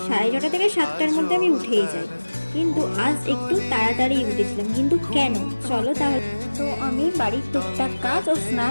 6:30 থেকে 7টার মধ্যে আমি উঠেই যাই। কিন্তু আজ একটু তাড়াতাড়ি উঠেছিলাম, কিন্তু কেন? চলো তাহলে। তো আমি বাড়ির টুকটাক কাজ ও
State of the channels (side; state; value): both; inverted; correlation -1.00